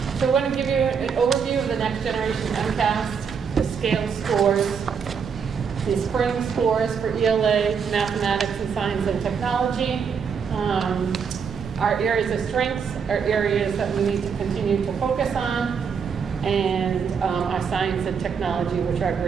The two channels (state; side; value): quieter; left; 6.4 dB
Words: So I want to give you an overview of the next generation MCAS, the scale scores, the spring scores for ELA, mathematics, and science and technology. Our areas of strengths are areas that we need to continue to focus on, and our science and technology, which our